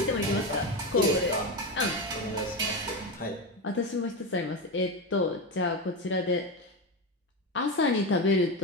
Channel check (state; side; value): normal; both; correlation 0.16